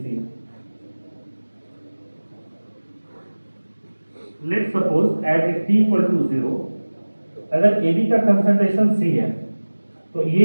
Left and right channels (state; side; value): inverted; both; correlation -1.00